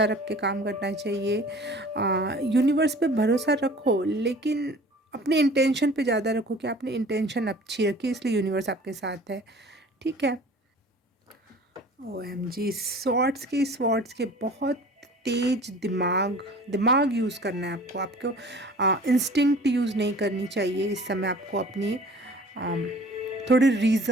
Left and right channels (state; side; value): normal; both; correlation 0.46